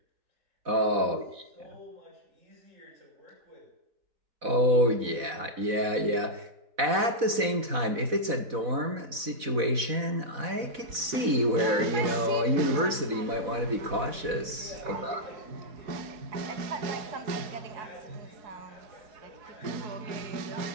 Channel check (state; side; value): late; left; 4.1 ms